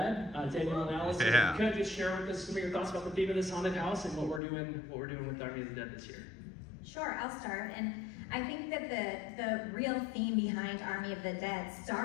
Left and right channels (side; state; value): right; drops out; at 4.4 s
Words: Daniel and Alice, Yeah. Could you just share with us some of your thoughts about the theme of this haunted house and what we're doing with Army of the Dead this year? Sure, I'll start. And I think that the real theme behind Army of the Dead